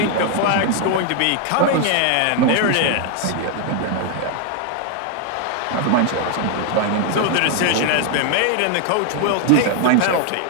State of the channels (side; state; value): both; different; correlation 0.01